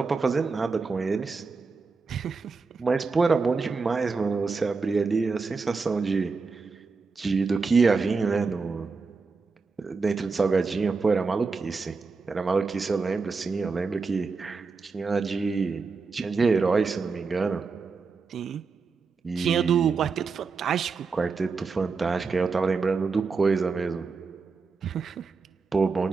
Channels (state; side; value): quieter; left; 4.6 dB